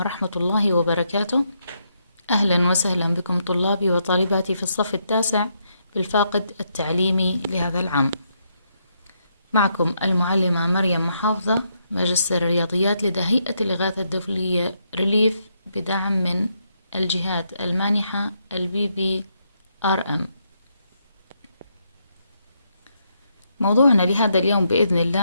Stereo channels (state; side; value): inverted; both; correlation -0.78